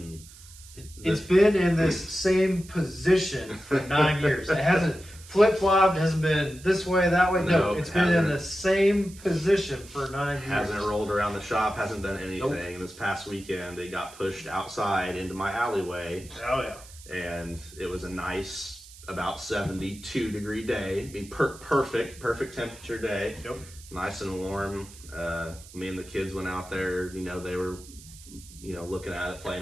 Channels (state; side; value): noise; right; hiss, 19 dB below the sound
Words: it's been in this same position for 9 years. It hasn't flip-flopped, hasn't been this way, that way. No, it's been in the same position for 9 years. Hasn't rolled around the shop, hasn't done anything. Nope. This past weekend, it got pushed outside into my alleyway. Oh, yeah. And it was a nice, about 72-degree day. I mean, perfect temperature day. Yep. Nice and warm. Me and the kids went out there. They were, looking at it,